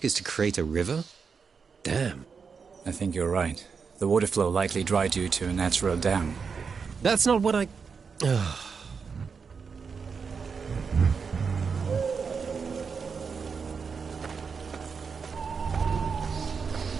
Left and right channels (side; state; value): left; quieter; 5.6 dB